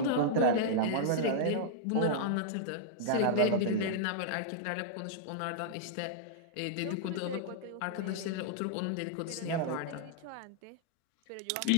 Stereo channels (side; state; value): both; different; correlation -0.01